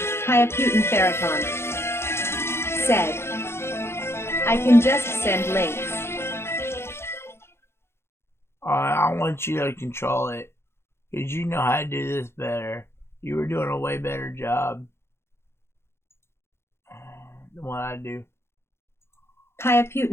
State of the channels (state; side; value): late; right; 0.12 ms